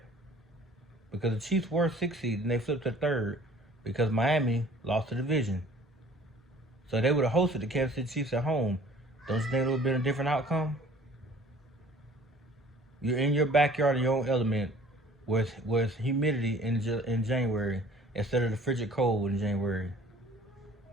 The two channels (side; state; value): both; normal; correlation 0.51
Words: Because the Chiefs were 6th seed and they flipped to 3rd. because Miami lost the division. So they would have hosted the Kansas City Chiefs at home. Don't you think it would have been a different outcome? You're in your backyard in your own element with humidity in January instead of the frigid cold in January.